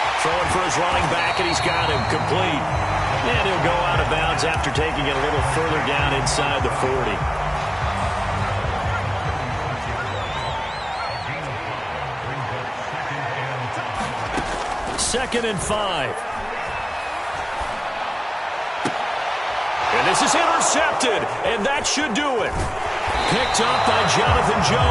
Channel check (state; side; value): identical; both; correlation 1.00